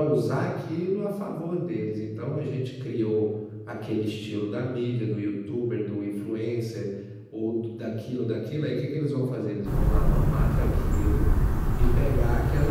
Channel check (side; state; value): both; identical; correlation 1.00